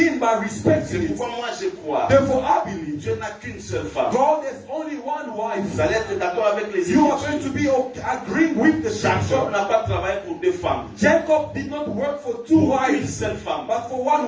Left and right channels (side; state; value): both; identical; correlation 1.00